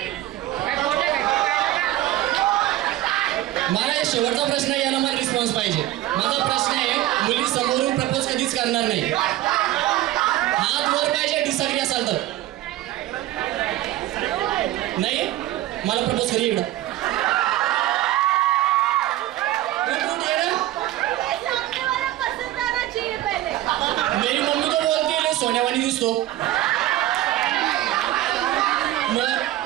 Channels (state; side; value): quieter; left; 14.9 dB